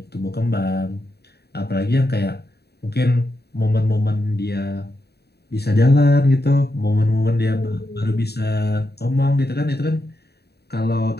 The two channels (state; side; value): late; right; 0.47 ms